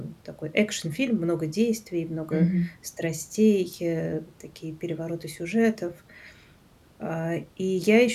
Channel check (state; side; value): identical; both; correlation 1.00